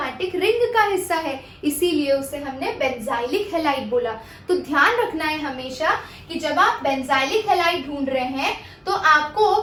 रिंग का हिस्सा है, इसीलिए उसे हमने बेंजाइलिक हैलाइड बोला। तो ध्यान रखना है हमेशा कि जब आप बेंजाइलिक हैलाइड ढूंढ रहे हैं तो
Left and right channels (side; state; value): both; identical; correlation 1.00